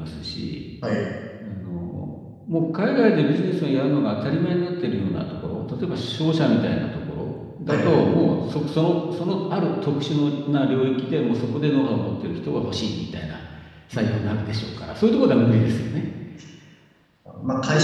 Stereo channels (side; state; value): both; identical; correlation 1.00